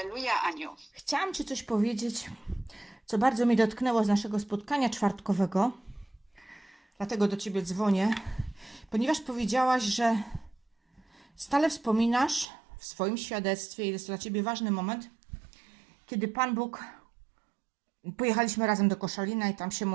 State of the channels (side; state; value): left; drops out; at 12.5 s